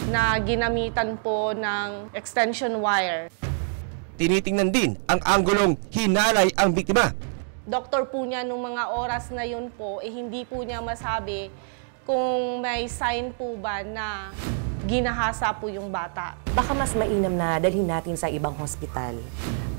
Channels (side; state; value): left; silent; 61 dB below the other